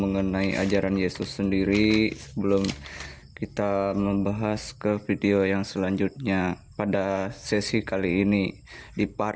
ajaran Yesus sendiri sebelum kita membahas ke video yang selanjutnya pada sesi kali ini, di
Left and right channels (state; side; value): identical; both; correlation 1.00